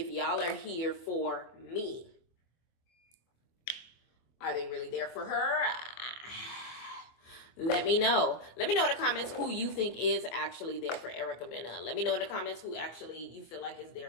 y'all are here for me. Are they really there for her? Let me know. Let me know in the comments who you think is actually there for Erica Mena. Let me know in the comments who actually you feel like is there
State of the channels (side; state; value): right; late; 24 ms